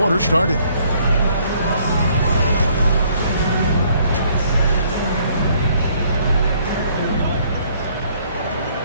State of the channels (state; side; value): inverted; both; correlation -0.64